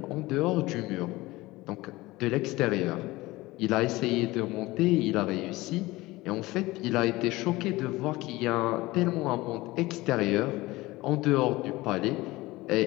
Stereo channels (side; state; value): right; quieter; 19.8 dB